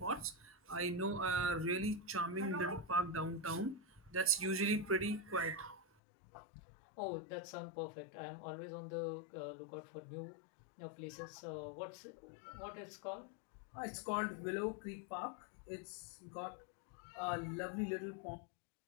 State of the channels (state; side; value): drops out; right; at 5.9 s